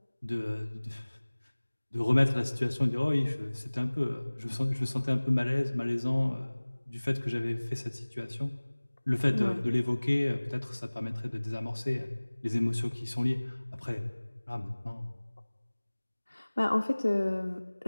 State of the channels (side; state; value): both; inverted; correlation -1.00